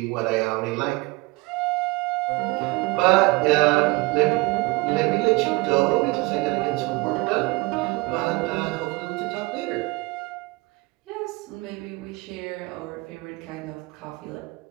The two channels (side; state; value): left; quieter; 24.3 dB